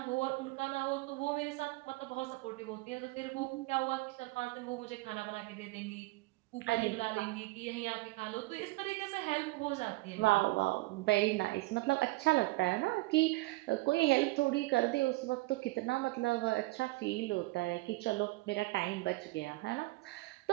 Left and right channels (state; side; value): quieter; left; 21.6 dB